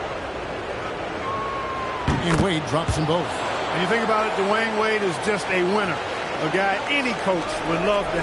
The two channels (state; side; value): identical; both; correlation 1.00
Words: And Wade drops them both. When you think about it, Dwayne Wade is just a winner. A guy any coach would love to